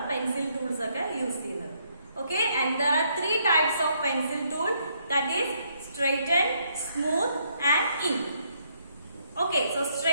pencil tools ഒക്കെ യൂസ് ചെയ്യുന്നത്. Okay, and there are 3 types of pencil tool, that is straighten, smooth and ink. Okay, so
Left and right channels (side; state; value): both; inverted; correlation -0.72